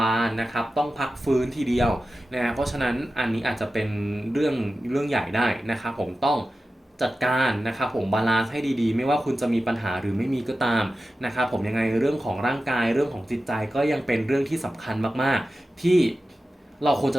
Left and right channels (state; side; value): normal; both; correlation 0.93